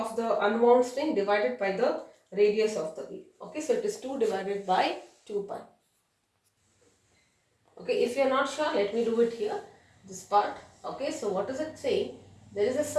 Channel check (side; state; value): both; identical; correlation 1.00